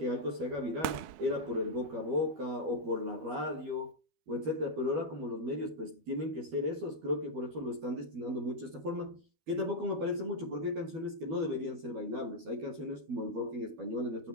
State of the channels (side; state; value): left; late; 12 ms